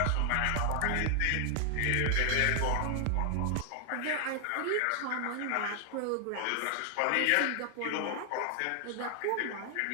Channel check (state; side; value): different; both; correlation 0.00